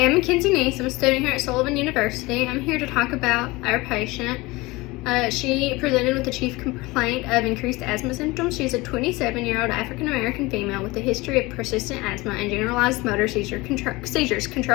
I'm Mackenzie Neese. I'm a student here at Sullivan University. I'm here to talk about our patient. She presented with the chief complaint of increased asthma symptoms. She's a 27-year-old African-American female with a history of persistent asthma and generalized motor seizures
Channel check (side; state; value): right; quieter; 22.3 dB